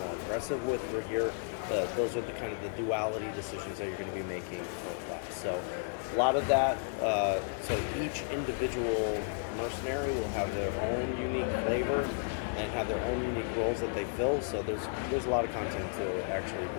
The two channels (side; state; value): right; silent; 56 dB below the other